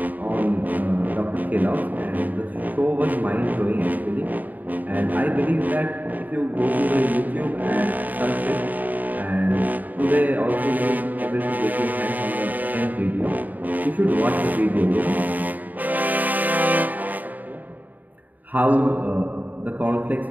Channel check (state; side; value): late; left; 0.083 ms